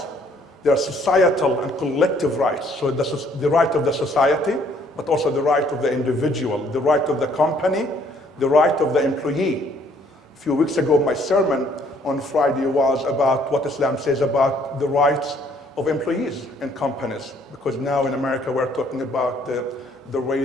there are societal and collective rights. So the right of the society, but also the right of the individual, the right of the company, the right of the employee. A few weeks ago, my sermon on Friday was about what Islam says about the rights of employees in companies, because now in America we're talking about the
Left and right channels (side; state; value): both; normal; correlation 0.63